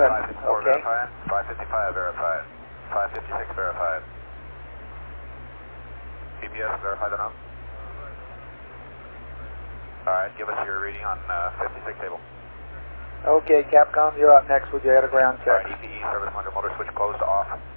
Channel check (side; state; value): both; inverted; correlation -1.00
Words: 554 Okay. verified, 555 verified, 556 verified. GPS verified enough? Alright, give us your reading on 56 table. Okay, Capcom, you're up next with your air to ground check. Alright, EPE service under motor switch closed to off.